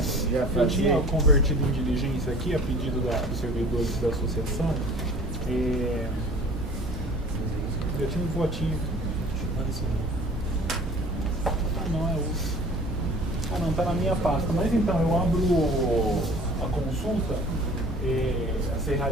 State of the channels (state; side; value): normal; both; correlation 0.47